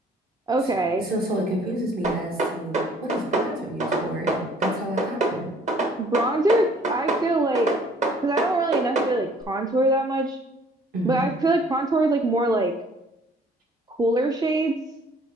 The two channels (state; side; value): normal; both; correlation 0.57